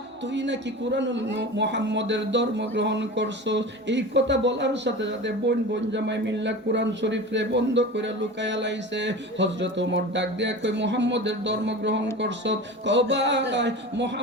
তুই নাকি কুরআনুল মুহাম্মদের ধর্ম গ্রহণ করছো? এই কথা বলার সাথে সাথে বোন জামাই মিল্লা কুরআন শরীফে বন্ধ করে লুকায়া লাইছে। হযরত ওমর ডাক দিয়া কই মুহাম্মদের ধর্ম গ্রহণ করছো? কও ভাই,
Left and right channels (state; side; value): normal; both; correlation 0.32